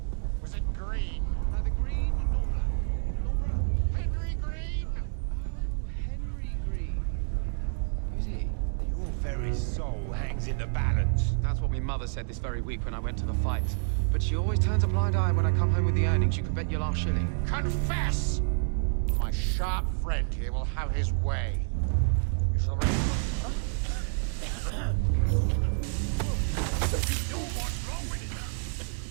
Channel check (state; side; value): silent; left; digital silence